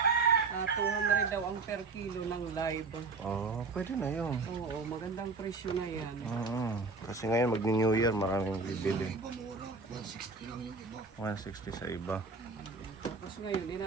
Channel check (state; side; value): quieter; left; 4.0 dB